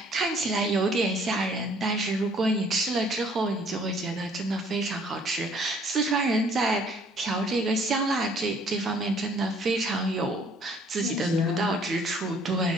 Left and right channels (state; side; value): normal; both; correlation 0.59